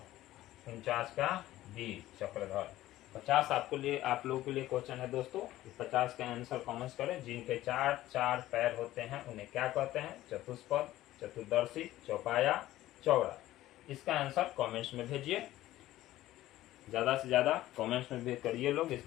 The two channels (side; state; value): right; quieter; 15.2 dB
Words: 49 का डी, चक्रधर। 50 आप लोगों के लिए क्वेश्चन है दोस्तों। 50 का आंसर कमेंट करें। जिनके चार चार पैर होते हैं उन्हें क्या कहते हैं? चतुष्पद, चतुर्दर्शी, चौपाया, चौड़ा। इसका आंसर कमेंट्स में भेजिए, ज्यादा से ज्यादा कमेंट्स में भेज करिए लोग,